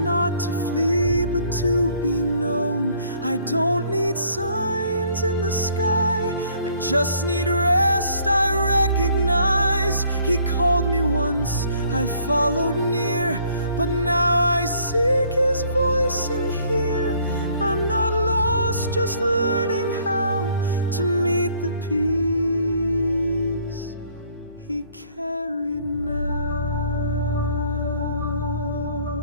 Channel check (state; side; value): inverted; both; correlation -0.61